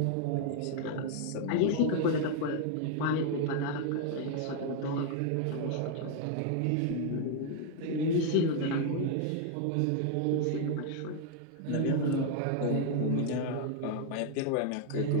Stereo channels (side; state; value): both; different; correlation 0.00